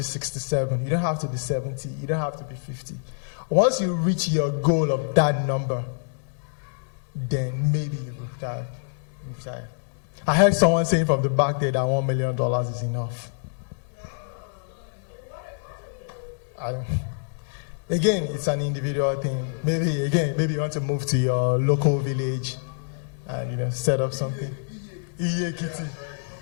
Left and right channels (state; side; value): silent; right; digital silence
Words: 67, you don't have to be 70, you don't have to be 50. Once you reach your goal of that number, then maybe you retire. I heard someone saying from the back there that $1 million is enough. Again, it's an individual thing. Maybe you want to move to your local village and set up something. Yeah,